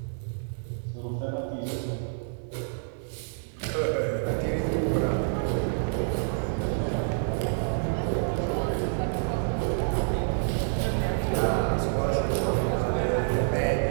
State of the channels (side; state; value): left; silent; 59 dB below the other